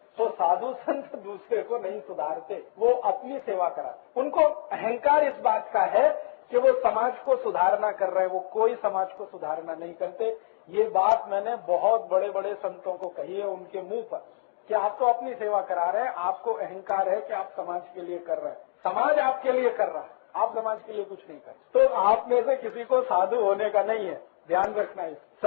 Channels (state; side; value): silent; right; digital silence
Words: तो साधु संत दूसरे को नहीं सुधारते, वो अपनी सेवा कराते। उनको अहंकार इस बात का है कि वो समाज को सुधारना कर रहे हैं, वो कोई समाज को सुधारना नहीं करते। ये बात मैंने बहुत बड़े बड़े संतों को कही है उनके मुंह पर कि आप तो अपनी सेवा करा रहे हैं, आपको अहंकार है कि आप समाज के लिए कर रहे हैं। समाज आपके लिए कर रहा है, आप समाज के लिए कुछ नहीं कर। तो आप में से किसी को साधु होने का नहीं है, ध्यान रखना है।